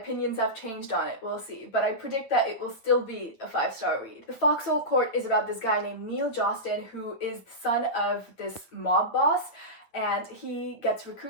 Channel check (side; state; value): right; late; 9.1 ms